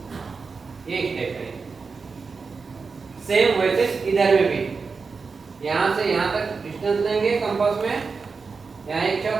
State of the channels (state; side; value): quieter; left; 4.8 dB